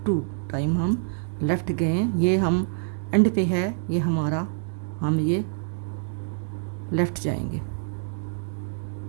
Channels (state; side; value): silent; left; digital silence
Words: 2 टाइम हम लेफ़्ट गए हैं। ये हम एंड पे है, ये हमारा, हम ये लेफ़्ट जाएंगे